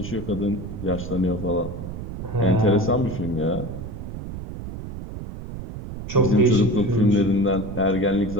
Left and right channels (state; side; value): noise; right; rumble, 9 dB below the sound